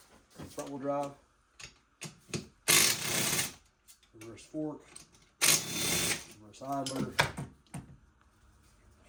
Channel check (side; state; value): both; identical; correlation 1.00